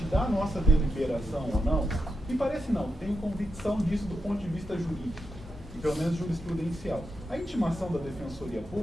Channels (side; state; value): both; normal; correlation 0.87